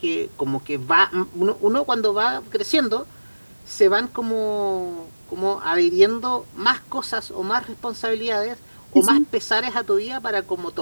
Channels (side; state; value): both; inverted; correlation -1.00